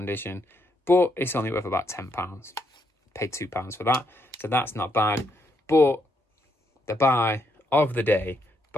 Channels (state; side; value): normal; both; correlation 0.77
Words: But it's only worth about £10. Paid £2 for that, so that's not bad. But the buy of the day